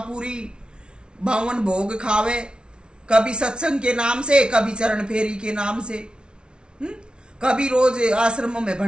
बावन भोग खावे, कभी सत्संग के नाम से, कभी चरण फेरी के नाम से, कभी रोज आश्रमों में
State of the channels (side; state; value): left; late; 0.056 ms